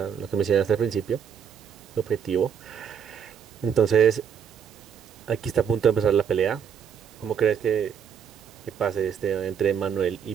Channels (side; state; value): left; quieter; 7.7 dB